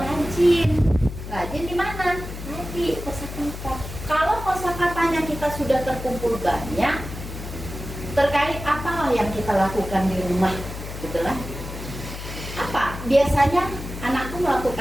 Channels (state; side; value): noise; left; hum, 9 dB below the sound